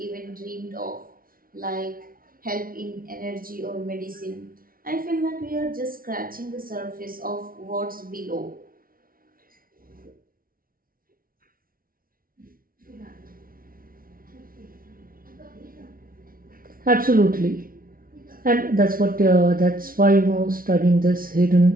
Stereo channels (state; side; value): late; left; 0.42 ms